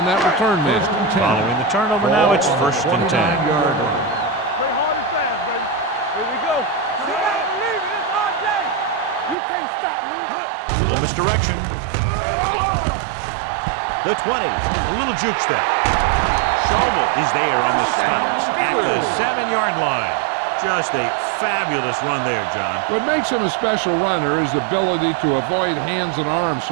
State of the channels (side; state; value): left; drops out; at 9.3 s